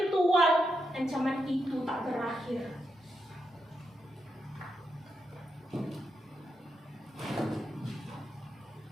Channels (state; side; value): normal; both; correlation 0.84